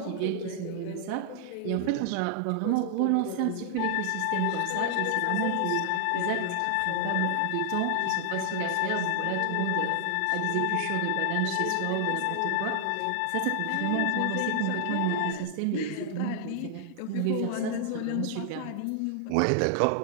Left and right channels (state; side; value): different; both; correlation 0.00